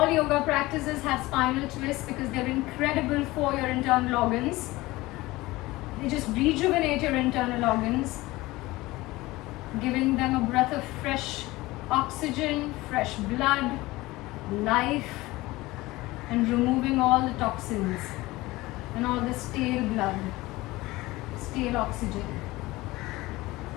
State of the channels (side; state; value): right; quieter; 19.7 dB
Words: yoga practices have spinal twists because they're incredible for your internal organs. They just rejuvenate your internal organs, giving them a breath of fresh oxygen, fresh blood, life, and removing all the toxins and all the stale blood, stale oxygen.